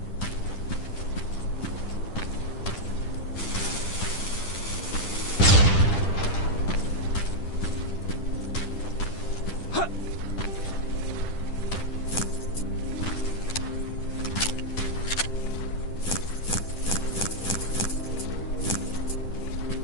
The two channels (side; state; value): right; late; 10 ms